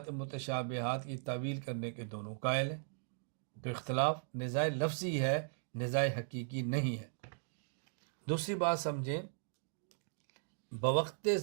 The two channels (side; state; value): left; silent; digital silence